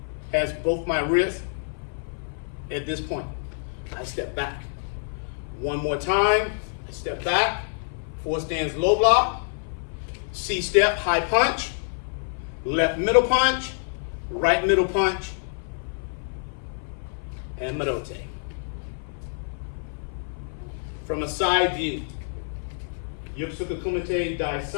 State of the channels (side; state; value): right; silent; 56 dB below the other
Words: has both my wrists at this point. I step back. One more time, I step back, 4 stands low block, C step, high punch, left middle punch, right middle punch, and Marote. From a side view, Yokosuka Kumite Dai